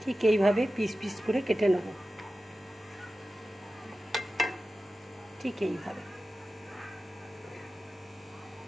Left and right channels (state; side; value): normal; both; correlation 0.94